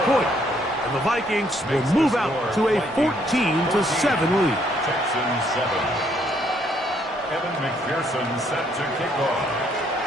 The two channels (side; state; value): both; normal; correlation 0.69